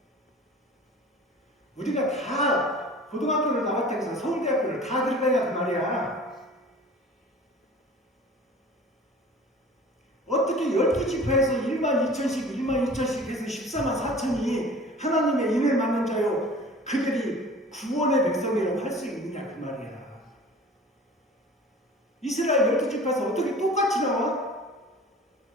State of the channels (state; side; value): normal; both; correlation 0.43